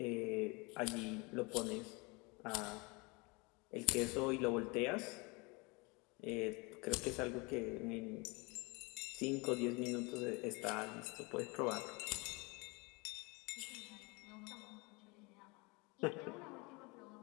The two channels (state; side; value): quieter; right; 27.5 dB